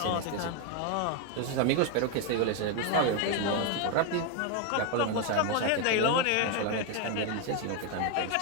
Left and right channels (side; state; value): both; different; correlation 0.01